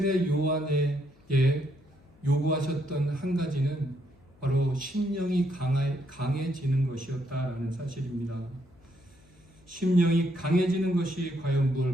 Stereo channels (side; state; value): left; noise; hum, 29 dB below the sound